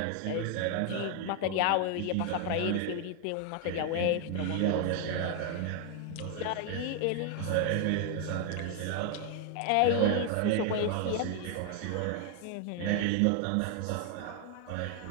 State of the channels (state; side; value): different; both; correlation 0.01